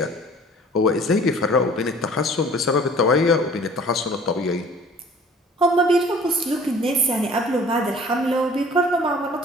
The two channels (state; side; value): normal; both; correlation 0.50